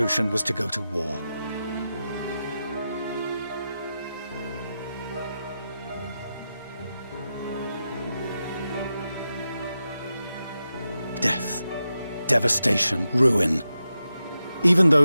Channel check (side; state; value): both; inverted; correlation -0.90